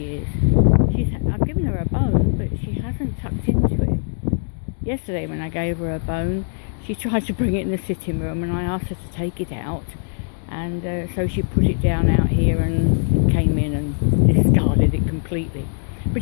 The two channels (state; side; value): silent; right; 65 dB below the other